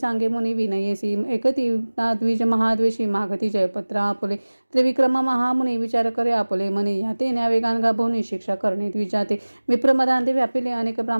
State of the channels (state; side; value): inverted; both; correlation -1.00